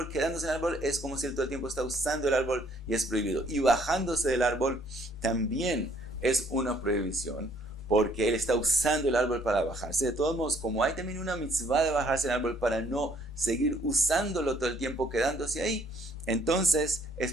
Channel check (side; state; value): both; normal; correlation 0.63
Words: quedándose en el árbol, es como si él todo el tiempo está usando el árbol y es prohibido. Y bajándose del árbol también es una prohibición, porque él está usando el árbol para bajarse. De todos modos, como hay también una mitzvah de bajarse del árbol para no seguir usándolo todo el tiempo quedándose ahí, entonces es